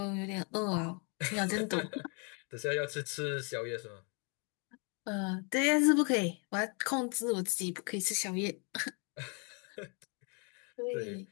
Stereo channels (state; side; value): quieter; right; 35.7 dB